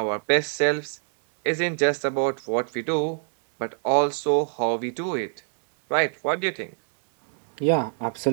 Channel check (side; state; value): left; silent; digital silence